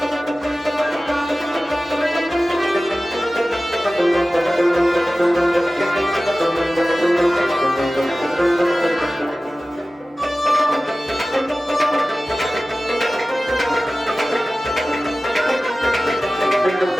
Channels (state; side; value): normal; both; correlation 0.96